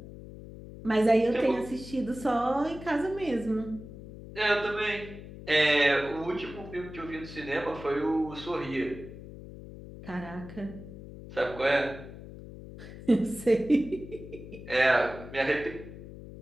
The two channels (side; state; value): left; noise; hum, 14 dB below the sound